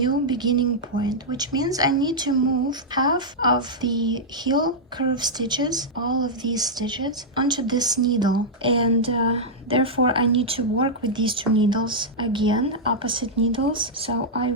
beginning point, which means I need to move half of the heel curve stitches, all of these stitches, onto this needle, and therefore I need to work with these 2 needles again, opposite needles. So I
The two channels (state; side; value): normal; both; correlation -0.07